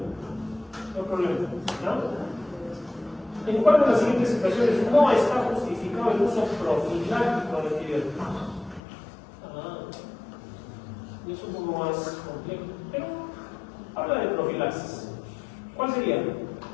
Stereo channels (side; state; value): right; drops out; at 8.8 s